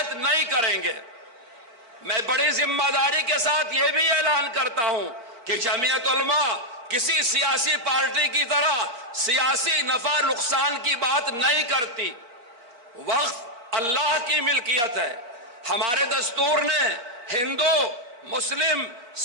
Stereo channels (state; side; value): late; left; 4.3 ms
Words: نہیں کریں گے۔ میں بڑی ذمہ داری کے ساتھ یہ بھی اعلان کرتا ہوں کہ جمعیت علماء کسی سیاسی پارٹی کی طرح سیاسی نفع نقصان کی بات نہیں کرتی۔ وقف اللہ کی ملکیت ہے۔ ہمارے دستور نے ہندو، مسلم،